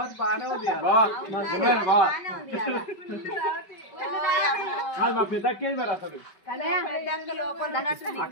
బాగానే ఉంది మా పెద్దక్కేది మరి అసలు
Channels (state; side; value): late; right; 5.3 ms